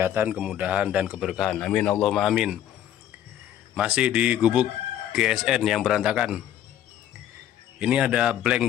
kemudahan, dan keberkahan. Amin Allahumma amin. Masih di gubuk GSN yang berantakan. Ini ada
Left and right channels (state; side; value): quieter; right; 11.4 dB